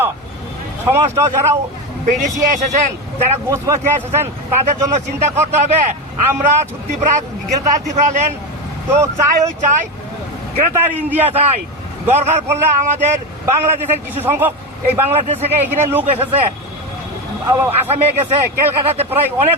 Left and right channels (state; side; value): normal; both; correlation 0.16